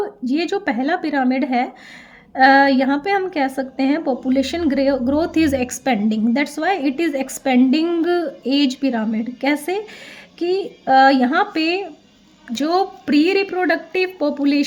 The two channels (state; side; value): identical; both; correlation 1.00